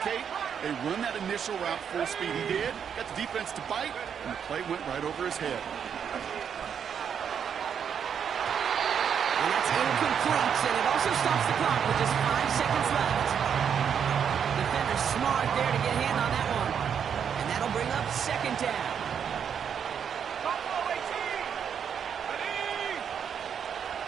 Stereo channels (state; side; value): quieter; left; 7.7 dB